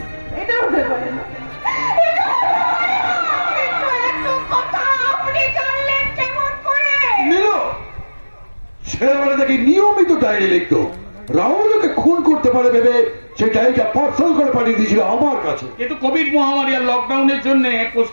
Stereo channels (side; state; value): both; inverted; correlation -1.00